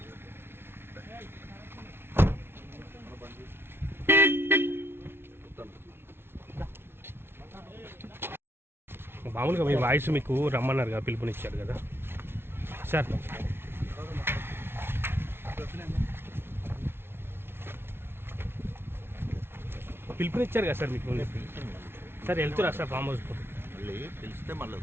మామూలుగా మీ వాయిస్ మీకు రమ్మన్నారు కదా, పిలుపునిచ్చారు కదా సార్. పిలుపునిచ్చారు కదా సార్ మీకు సార్. వెళ్తురా సార్ ఫామ్ హౌస్కు? మళ్ళీ పిలిస్తే మళ్ళీ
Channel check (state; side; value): late; left; 0.11 ms